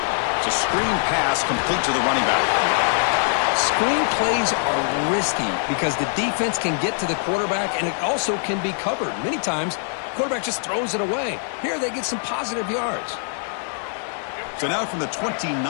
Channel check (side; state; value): right; silent; 61 dB below the other